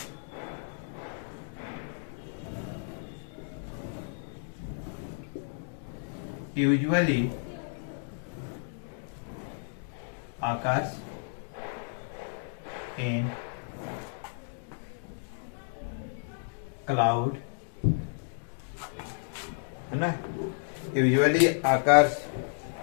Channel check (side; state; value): right; silent; digital silence